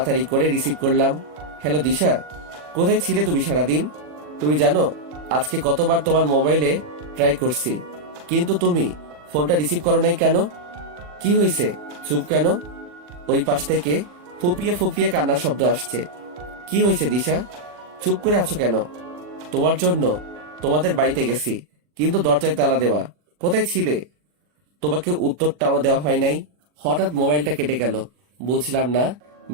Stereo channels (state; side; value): late; left; 40 ms